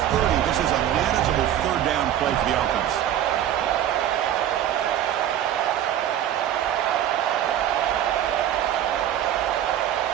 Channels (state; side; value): quieter; left; 11.1 dB